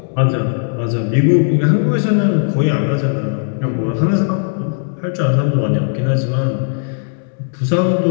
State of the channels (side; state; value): right; silent; 68 dB below the other